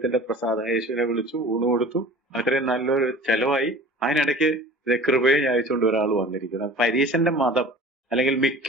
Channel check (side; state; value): both; normal; correlation 0.42